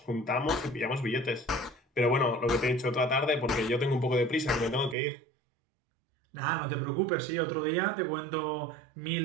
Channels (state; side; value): drops out; left; at 5.0 s